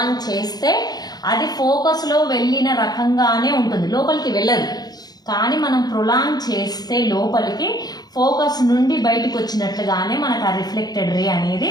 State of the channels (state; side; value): late; right; 0.19 ms